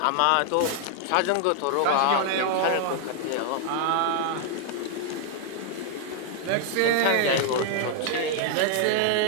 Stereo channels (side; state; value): both; different; correlation 0.00